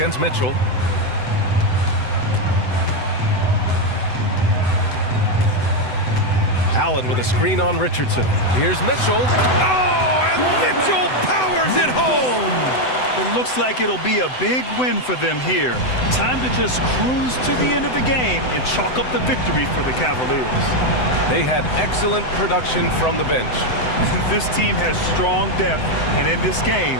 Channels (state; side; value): late; right; 7.9 ms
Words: Mitchell. Allen with a screen on Richardson. Here's Mitchell. Oh, and Mitchell powers it home. It looks like it'll be a big win for them here. Time to just cruise to the end of the game and chalk up the victory for the Cavaliers. They had excellent production from the bench. This team has strong depth, and in this game,